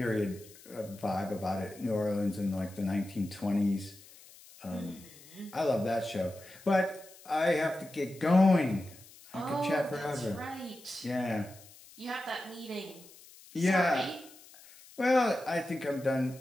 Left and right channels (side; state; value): left; noise; hiss, 22 dB below the sound